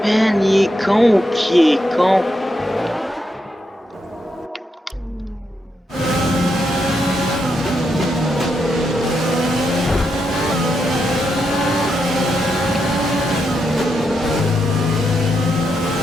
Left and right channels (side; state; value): both; normal; correlation 0.82